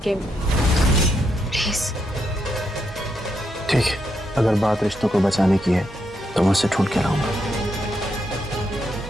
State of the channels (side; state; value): both; normal; correlation 0.80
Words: में। प्लीज। ठीक है, अगर बात रिश्तों को बचाने की है तो मैं उससे ढूंढ के लाऊंगा।